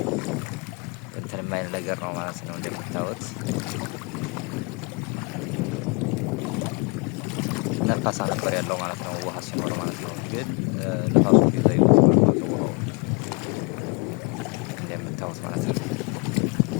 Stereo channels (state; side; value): quieter; right; 31.8 dB